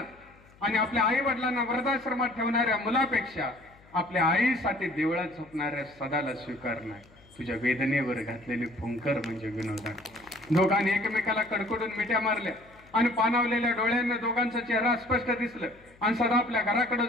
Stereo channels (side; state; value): left; noise; hum, 27 dB below the sound